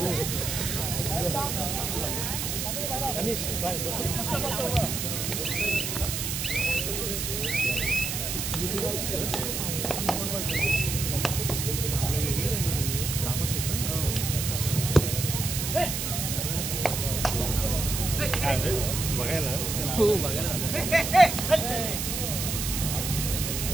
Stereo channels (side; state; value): right; noise; hiss, 2 dB below the sound